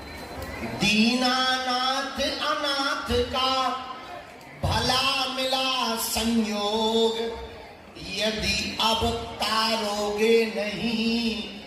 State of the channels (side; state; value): both; identical; correlation 1.00